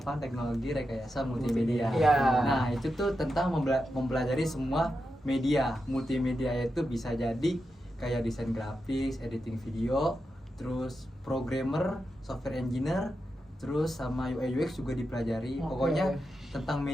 Teknologi Rekayasa Multimedia. Iya. Nah, itu tuh tentang mempelajari semua media. Multimedia itu bisa jadi kayak desain grafis, editing video, terus programmer, software engineer, terus sama UI UX juga dipelajari. Oke. Pokoknya tentang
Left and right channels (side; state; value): both; normal; correlation 0.88